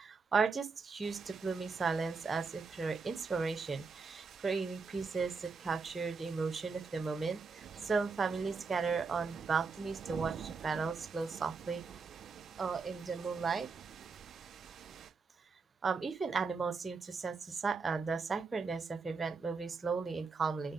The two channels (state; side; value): quieter; left; 4.7 dB